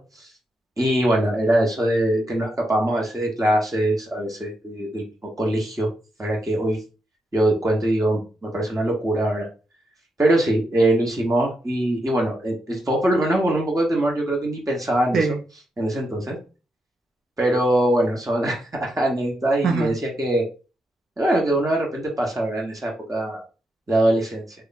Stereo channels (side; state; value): both; normal; correlation 0.83